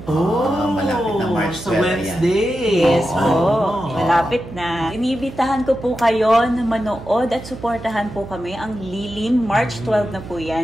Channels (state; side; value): noise; right; hum, 14 dB below the sound